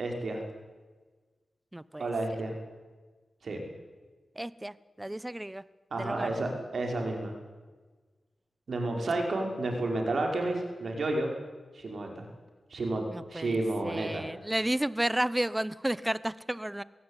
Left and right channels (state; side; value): normal; both; correlation 0.95